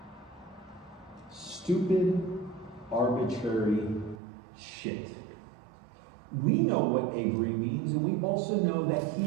Stupid, arbitrary shit. We know what Avery means, and we also know that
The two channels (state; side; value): drops out; left; at 4.2 s